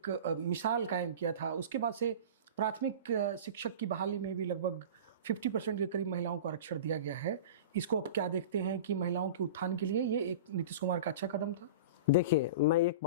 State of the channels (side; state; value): both; inverted; correlation -0.34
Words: मिसाल कायम किया था। उसके बाद से प्राथमिक शिक्षक की बहाली में भी लगभग 50% के करीब महिलाओं को आरक्षण दिया गया है। इसको अब क्या देखते हैं कि महिलाओं के उत्थान के लिए ये एक नीतीश कुमार का अच्छा कदम था? देखिए, मैं एक